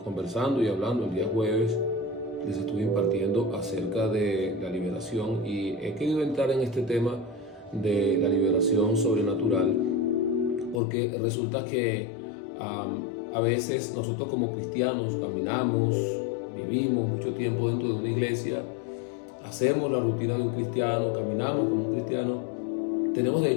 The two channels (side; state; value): right; drops out; at 10.8 s